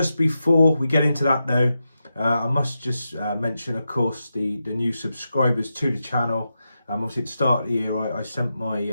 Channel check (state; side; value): inverted; both; correlation -0.88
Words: before we get into that though, I must just mention, of course, the new subscribers to the channel. Obviously at the start of the year I